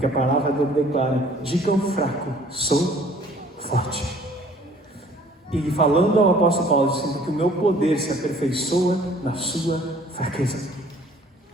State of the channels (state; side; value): normal; both; correlation 0.55